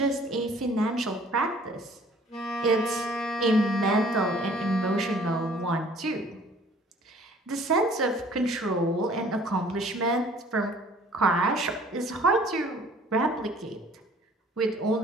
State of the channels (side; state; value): both; normal; correlation 0.54